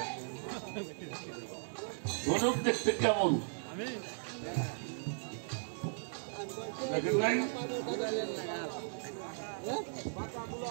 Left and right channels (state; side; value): silent; left; digital silence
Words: ধনুক দেখতে কেমন দেখেন নাই